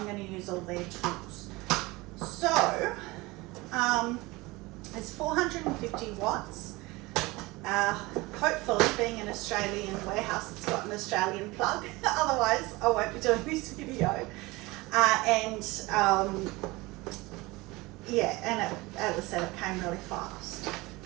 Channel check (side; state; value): left; quieter; 22.2 dB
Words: going to use all their tools. So it's 450 watts. Hopefully, being an Australian warehouse, it's got an Australian plug. Otherwise, I won't be doing this video. Yeah, and as I said, it came really fast.